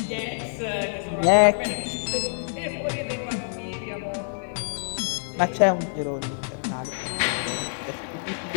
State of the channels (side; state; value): right; silent; 61 dB below the other